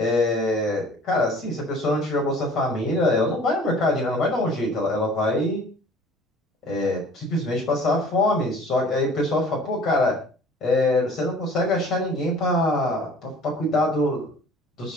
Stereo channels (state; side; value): normal; both; correlation 0.49